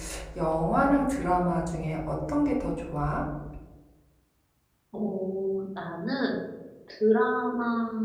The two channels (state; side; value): identical; both; correlation 1.00